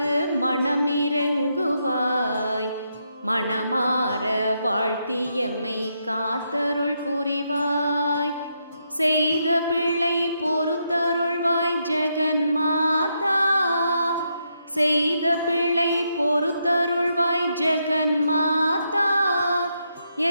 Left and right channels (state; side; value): inverted; both; correlation -0.80